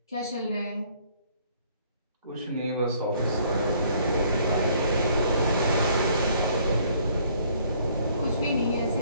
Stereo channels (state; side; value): inverted; both; correlation -0.61